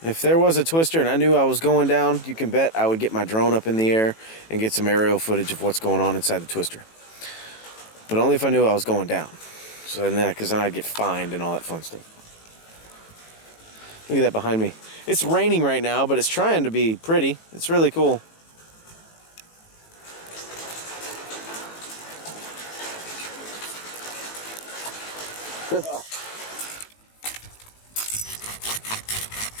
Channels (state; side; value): late; right; 18 ms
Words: If there was a twister and I knew I was going down, you can bet I would get my drone up in the air and get some aerial footage of what's going on inside the twister. But only if I knew I was going down. So then, because then I'd get fined and all that fun stuff. Look at that behind me. It's raining right now, but it's trying to be pretty. It's really cool.